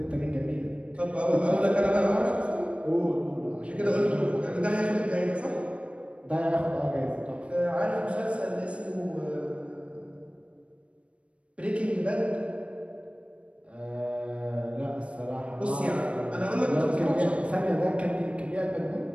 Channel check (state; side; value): late; left; 0.061 ms